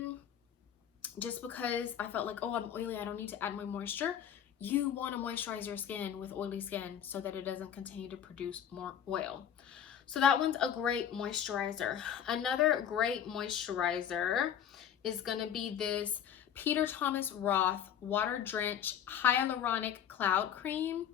just because I felt like, oh, I'm oily, I don't need to add more moisture. You want to moisturize your skin with oily skin so that it doesn't continue to produce more oil. So that one's a great moisturizer. Another great moisturizer is going to be this Peter Thomas Roth Water Drench Hyaluronic Cloud Cream.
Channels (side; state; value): right; quieter; 9.2 dB